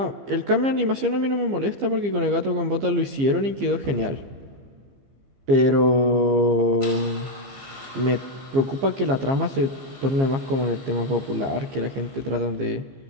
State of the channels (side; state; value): left; late; 15 ms